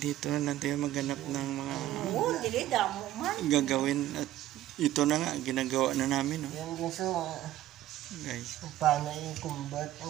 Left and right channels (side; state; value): left; quieter; 13.8 dB